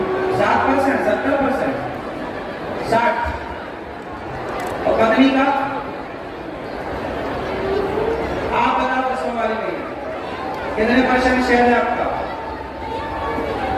7%, 70%, 60। और पत्नी का? आप बताओ, 10 वाले में कितने % शेयर है आपका?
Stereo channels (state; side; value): identical; both; correlation 1.00